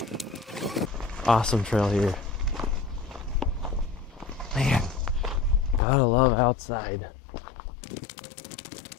Awesome trail here. Man, gotta love outside. I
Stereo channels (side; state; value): right; drops out; at 5.8 s